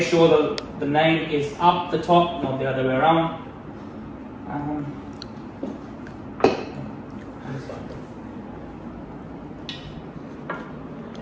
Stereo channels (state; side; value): identical; both; correlation 1.00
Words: sure the name is up the top, not the other way around.